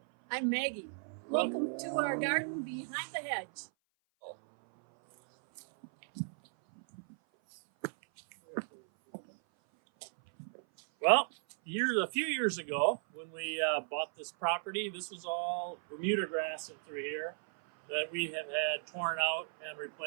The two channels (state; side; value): silent; left; 54 dB below the other